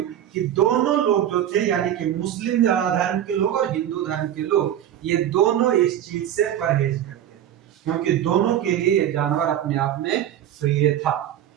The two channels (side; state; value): left; quieter; 10.9 dB